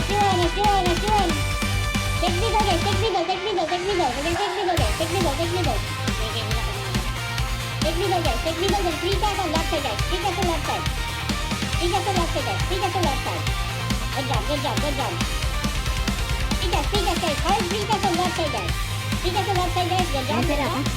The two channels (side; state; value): both; identical; correlation 1.00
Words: Take middle guys, take middle. We're gonna take middle guys. Take middle then 3 guys on left side guys. 3 guys on left side. Good job. 3 guys guys. Hard 3 guys on left side guys. 3 guys on left side guys. Good job.